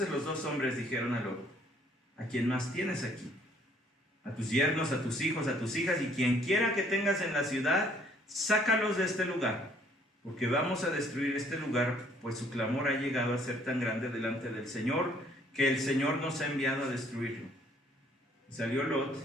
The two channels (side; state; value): both; normal; correlation 0.62